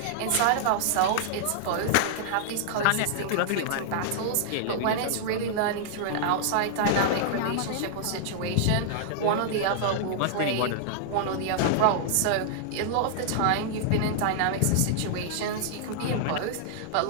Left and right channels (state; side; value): different; both; correlation -0.01